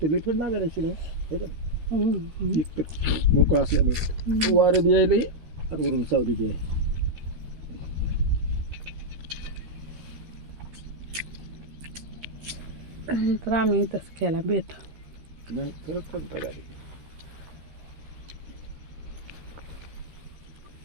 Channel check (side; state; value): left; late; 13 ms